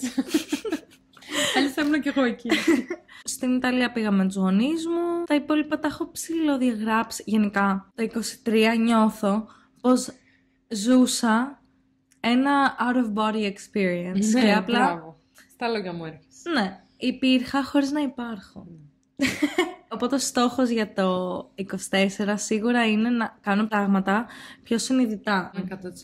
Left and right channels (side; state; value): both; identical; correlation 1.00